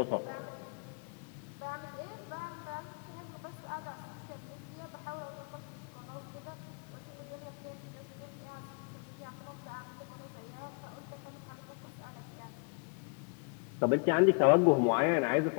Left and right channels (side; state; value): right; quieter; 38.0 dB